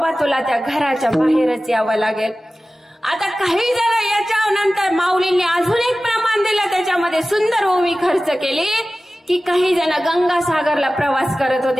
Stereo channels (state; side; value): normal; both; correlation 0.96